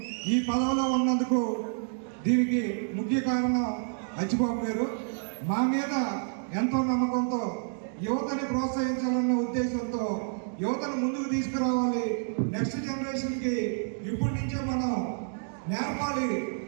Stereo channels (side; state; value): left; silent; digital silence